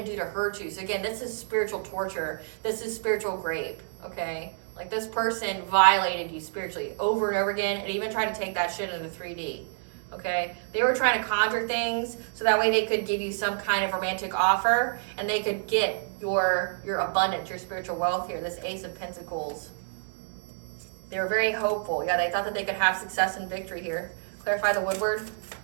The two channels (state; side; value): silent; left; digital silence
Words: do to hurt you. So again, this is spiritual torture. This is spiritual rape, okay? Like, this person violated you spiritually over and over again, and even tried to take that shit into 3D. Okay, they were trying to conjure things so that way they could give you some kind of romantic offer, and they could get your abundance, your spiritual wealth here. This Ace of Pentacles. They were very hopeful. Yeah, they thought that they could have success and victory here. Clarify the Woodward.